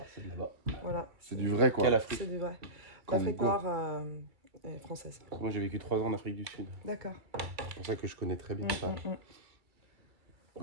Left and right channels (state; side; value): late; left; 2.3 ms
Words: c'est de là-bas. Voilà, C'est du vrai, quoi. Quelle Afrique? c'est du vrai. Comme L'Afrique quoi. noire est française. Moi j'ai vécu 3 ans en Afrique du Sud. D'accord. C'est pour ça que je connais très bien ça.